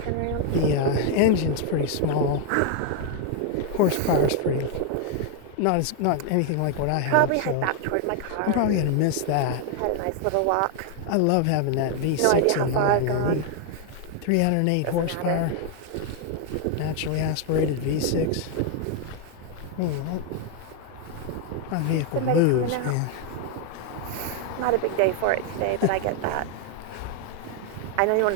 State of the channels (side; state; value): both; different; correlation 0.00